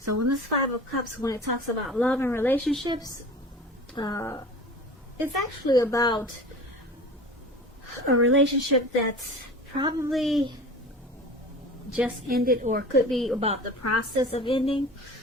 when this Five of Cups, when it talks about love and relationships, it's actually about a relationship that's probably just ended, or could be about the process of ending.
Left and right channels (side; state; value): both; normal; correlation 0.38